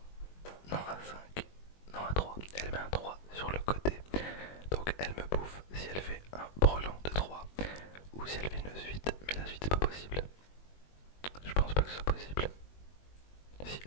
non un 5, non un 3. Elle met un 3 sur le côté. Donc elle me bouffe si elle fait un brelan de 3 ou si elle fait une suite. Mais la suite c'est pas possible. Je pense pas que ce soit possible. Si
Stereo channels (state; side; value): late; right; 21 ms